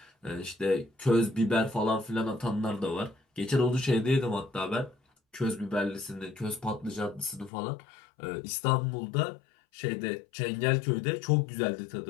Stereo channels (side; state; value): right; drops out; at 7.5 s